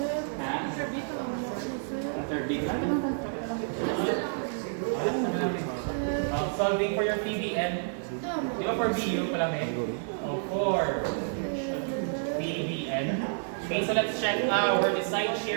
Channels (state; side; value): silent; left; digital silence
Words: Ha? Third beat. Solving for your PBN. Di ba for BU pala may? For PBN. Okay, so let's check our side